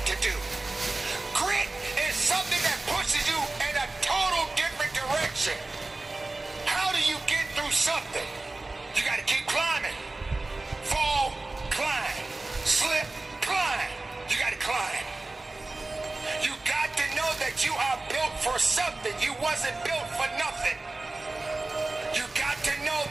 to do. Grit is something that pushes you in a total different direction. How do you get through something? You got to keep climbing. Fall, climb. Slip, climb. You got to climb. You got to know that you are built for something. You wasn't built for nothing. You got to know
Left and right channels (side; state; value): left; quieter; 3.1 dB